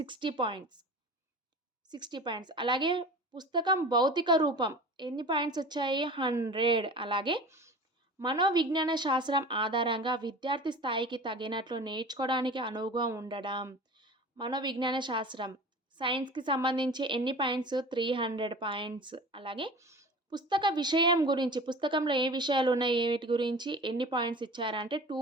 పాయింట్స్. 60 పాయింట్స్. అలాగే పుస్తకం భౌతిక రూపం ఎన్ని పాయింట్స్ వచ్చాయి? 100. అలాగే మనోవిజ్ఞాన శాస్త్రం ఆధారంగా విద్యార్థి స్థాయికి తగినట్లు నేర్చుకోవడానికి అనువుగా ఉండడం. మనోవిజ్ఞాన శాస్త్రం సైన్స్‌కి సంబంధించి ఎన్ని పాయింట్స్? 300 పాయింట్స్. అలాగే పుస్తక విషయం గురించి, పుస్తకంలో ఏ విషయాలు ఉన్నాయి, వీటి గురించి ఎన్ని పాయింట్స్ ఇచ్చారంటే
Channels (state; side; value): normal; both; correlation 0.37